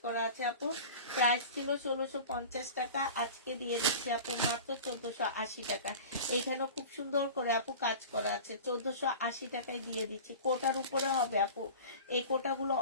করা আছে আপু। প্রাইস ছিল 1650 টাকা, আজকে দিয়ে দিচ্ছি আপু মাত্র 1480 টাকা। এখানেও খুব সুন্দর করে আপু কাজ করা আছে, 1480 টাকায় দিয়ে দিচ্ছি। কোটার উপরে হবে আপু, এই কোটাগুলো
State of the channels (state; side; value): inverted; both; correlation -0.36